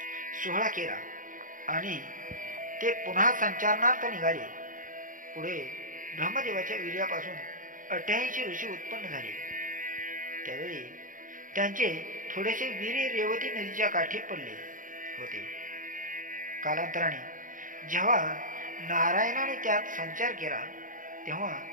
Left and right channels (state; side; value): late; left; 0.39 ms